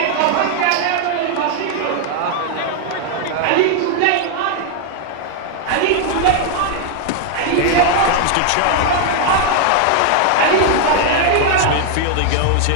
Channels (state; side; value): different; both; correlation 0.00